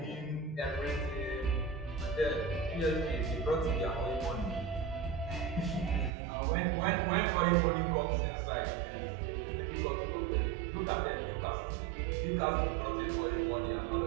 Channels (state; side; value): drops out; left; at 6.1 s